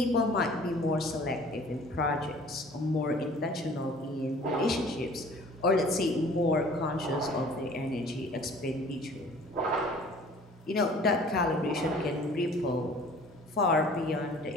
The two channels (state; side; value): normal; both; correlation 0.50